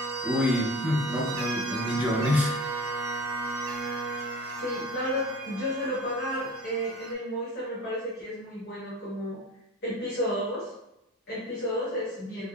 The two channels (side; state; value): both; normal; correlation 0.39